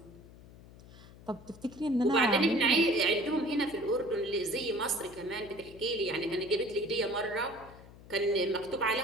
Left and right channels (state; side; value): noise; left; hum, 20 dB below the sound